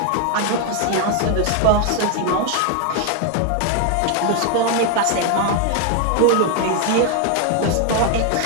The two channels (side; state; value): both; different; correlation 0.01